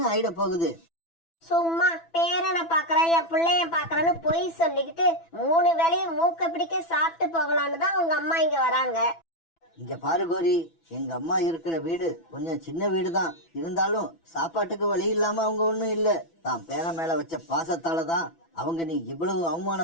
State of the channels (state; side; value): late; right; 6.0 ms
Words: ஆயிட போகுது? சும்மா பேரனை பாக்குறேன், என் பிள்ளைய பாக்குறேன்னு பொய் சொல்லிக்கிட்டு 3 வேளையும் மூக்க பிடிக்க சாப்பிட்டு போகலான்னு தான் உங்க அம்மா இங்க வராங்க. இங்க பாரு கோரி, எங்க அம்மா இருக்கிற வீடு கொஞ்சம் சின்ன வீடு தான். இருந்தாலும் சாப்பாட்டுக்கு வழி இல்லாம அவங்க ஒண்ணும் இல்ல. தான் பேர மேல வச்ச பாசத்தால தான் அவங்க நீ இவ்வளவு